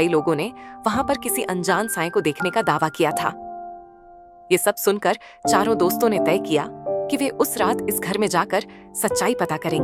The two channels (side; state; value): both; identical; correlation 1.00